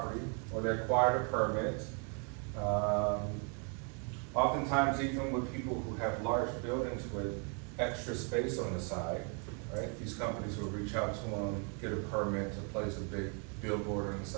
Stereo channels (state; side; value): quieter; left; 38.7 dB